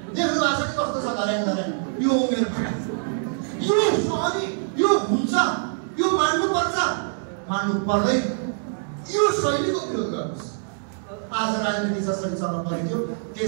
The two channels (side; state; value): left; silent; digital silence